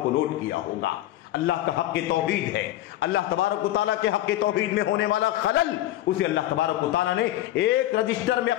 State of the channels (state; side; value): quieter; right; 14.5 dB